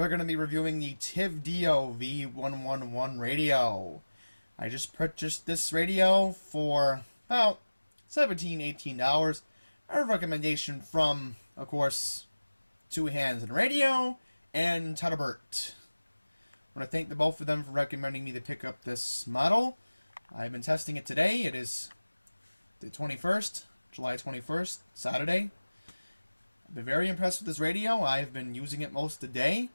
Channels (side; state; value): both; inverted; correlation -1.00